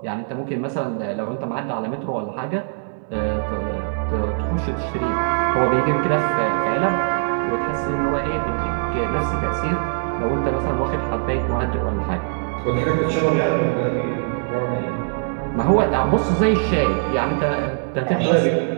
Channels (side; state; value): left; silent; digital silence